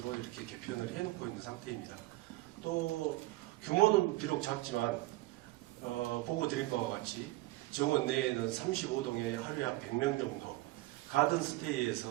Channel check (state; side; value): quieter; left; 19.1 dB